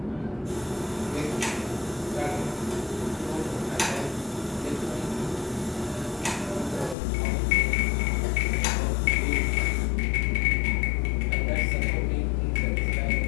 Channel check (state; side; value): drops out; right; at 7.0 s